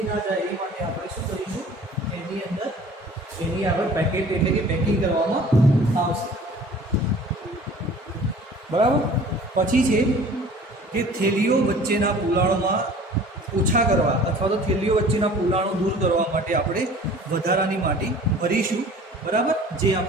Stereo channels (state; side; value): normal; both; correlation 0.47